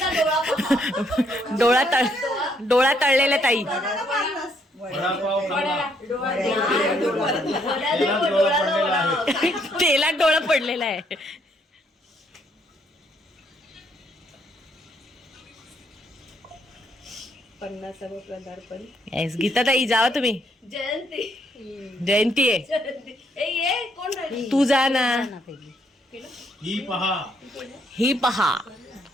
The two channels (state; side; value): normal; both; correlation 0.71